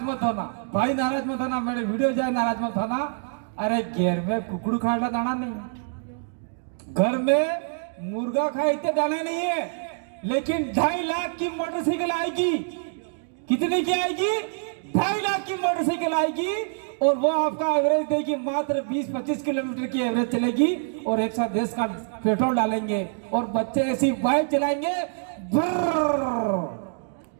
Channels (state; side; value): silent; left; 61 dB below the other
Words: मत होना भाई, नाराज मत होना, मेरे वीडियो जाए नाराज मत होना। अरे घेर में कुकड़ू खाना दाना नहीं, घर में मुर्गा खाए इतने दाने नहीं है, लेकिन 2.5 लाख की मोटरसाइकिल आएगी। कितने की आएगी? 2.5 लाख की मोटरसाइकिल आएगी और वो आपका एवरेज देगी मात्र 20-25 किलोमीटर की एवरेज चलेगी और 110 का पेट्रोल डालेंगे और बच्चे ऐसी बाइक चलाएंगे